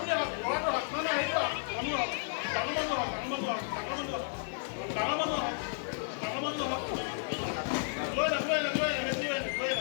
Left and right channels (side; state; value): right; silent; 56 dB below the other